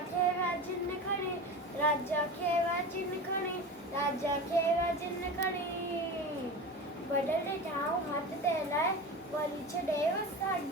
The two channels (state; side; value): normal; both; correlation 0.29